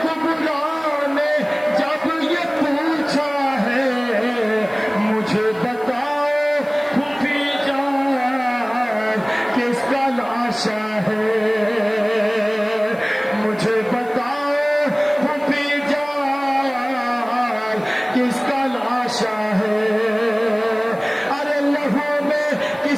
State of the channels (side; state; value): left; noise; hiss, 28 dB below the sound